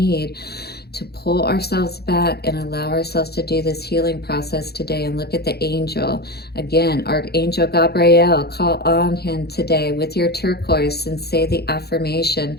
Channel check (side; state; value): right; late; 0.47 ms